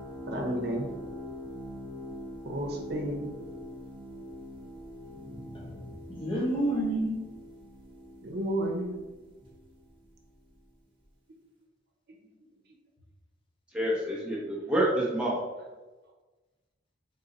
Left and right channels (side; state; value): both; normal; correlation 0.59